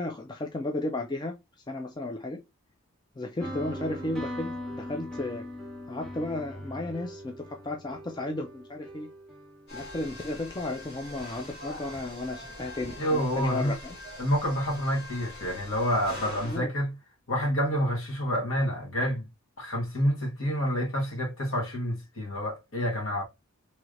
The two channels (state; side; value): normal; both; correlation 0.45